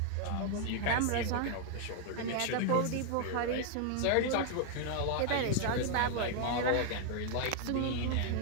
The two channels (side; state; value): both; different; correlation 0.00